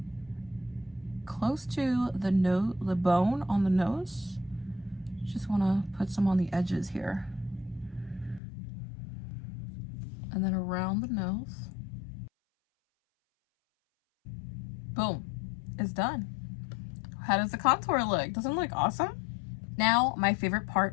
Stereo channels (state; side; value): drops out; right; at 8.4 s